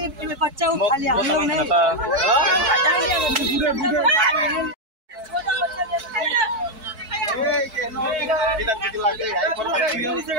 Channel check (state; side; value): late; left; 4.6 ms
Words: बच्चा उठा लिया हम लोग ने